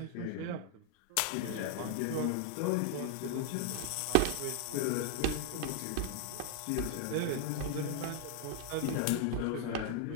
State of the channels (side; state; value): both; different; correlation 0.00